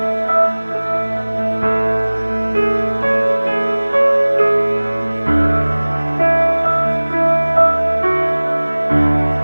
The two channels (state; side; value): inverted; both; correlation -1.00